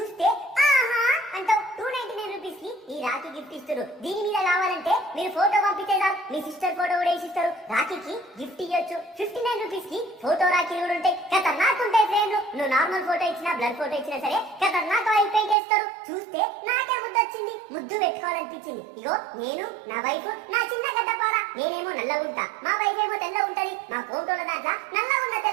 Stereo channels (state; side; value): drops out; left; at 15.6 s